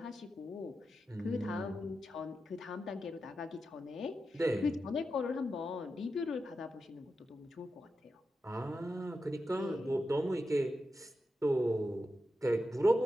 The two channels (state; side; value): normal; both; correlation 0.89